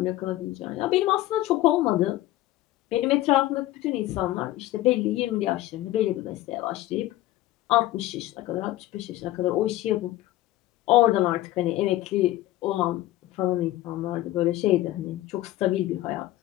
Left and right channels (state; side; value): quieter; right; 15.9 dB